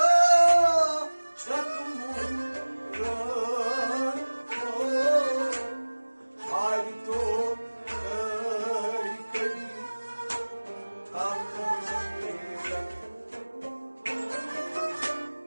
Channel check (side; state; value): both; inverted; correlation -1.00